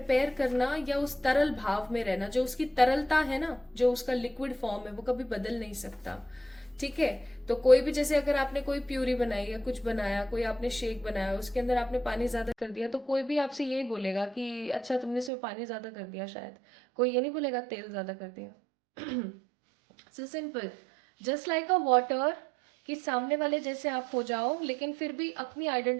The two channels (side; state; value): left; drops out; at 15.3 s